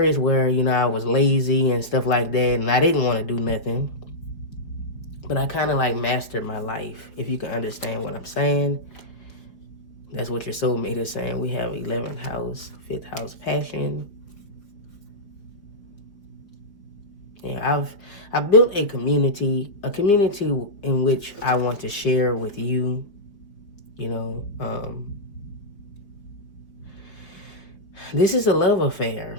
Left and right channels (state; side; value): late; right; 4.8 ms